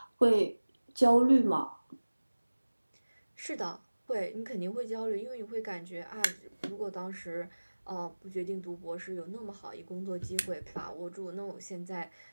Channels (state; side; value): inverted; both; correlation -1.00